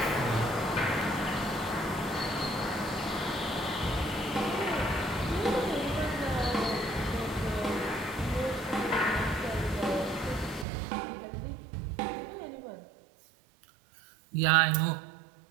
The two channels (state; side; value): drops out; left; at 10.7 s